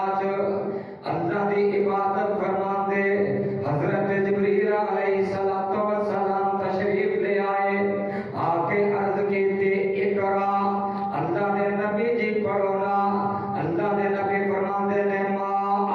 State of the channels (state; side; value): identical; both; correlation 1.00